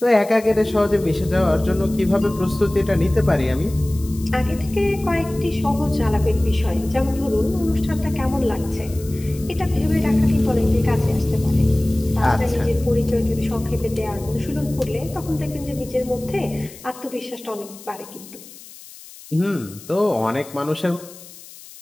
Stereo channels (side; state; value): left; noise; hiss, 19 dB below the sound